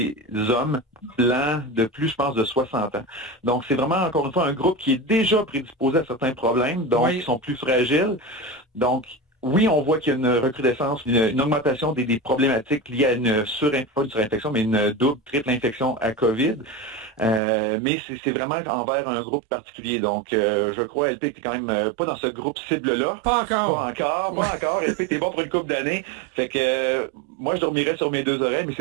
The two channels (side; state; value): left; drops out; at 17.4 s